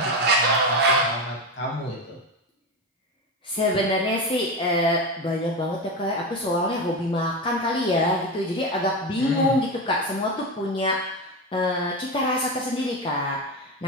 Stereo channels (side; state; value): both; normal; correlation 0.18